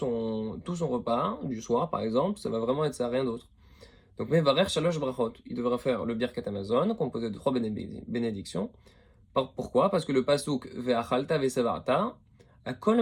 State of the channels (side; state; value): both; identical; correlation 1.00